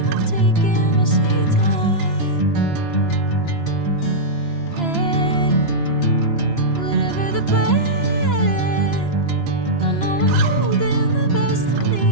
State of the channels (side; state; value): right; late; 2.9 ms